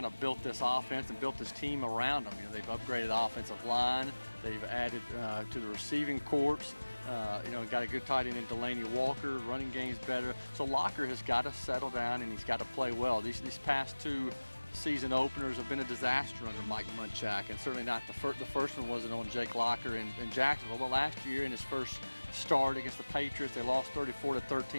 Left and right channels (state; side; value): inverted; both; correlation -1.00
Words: of built this offense and built this team around him. You know, they've upgraded the offensive line. They've added to the receiving corps. Got a good tight end in Delaney Walker. Running game's better. So Locker has got to settle down and he's got to play well. These past 2 season openers have been a disaster under Mike Munchak, and certainly not the first one wasn't on Jake Locker in Jacksonville. But last year in his first start against the Patriots, they lost